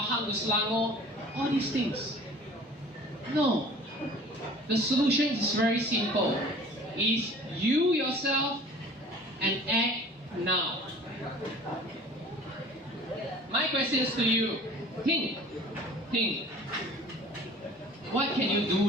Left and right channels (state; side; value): normal; both; correlation 0.46